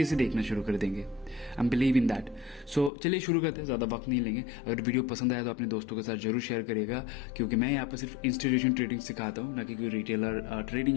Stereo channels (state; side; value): drops out; right; at 2.9 s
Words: से देखना शुरू कर देंगे। I am believe in that. So चलिए शुरू करते हैं, ज़्यादा वक्त नहीं लेंगे। अगर वीडियो पसंद आया तो अपने दोस्तों के साथ जरूर शेयर करिएगा, क्योंकि मैं यहाँ पर सिर्फ इंस्टीट्यूशन ट्रेडिंग सिखाता हूँ, ना कि कोई रिटेलर